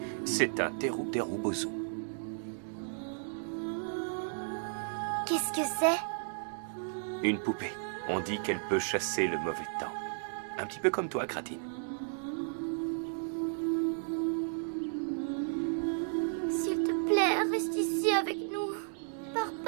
C'est un Teru Bozu. Qu'est-ce que c'est? Une poupée. On dit qu'elle peut chasser le mauvais temps. Un petit peu comme toi, Kratine. S'il te plaît, reste ici avec nous. Pars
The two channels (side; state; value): left; silent; digital silence